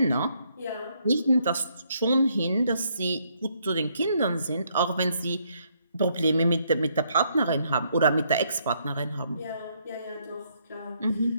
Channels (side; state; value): both; inverted; correlation -0.72